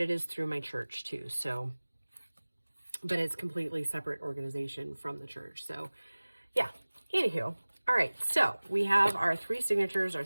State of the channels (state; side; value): inverted; both; correlation -1.00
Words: it is through my church too. So, but it's completely separate organization from the church. So yeah, anywho. All right. So we have our 3 signatures, our